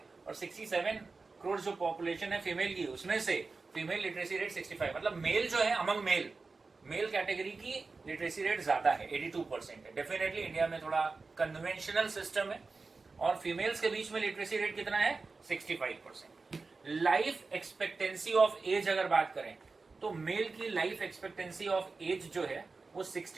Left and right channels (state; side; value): quieter; left; 4.0 dB